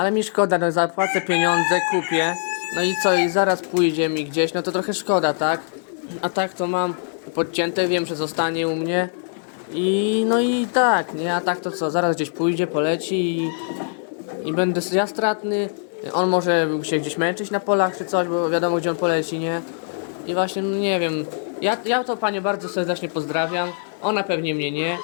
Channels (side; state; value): right; silent; digital silence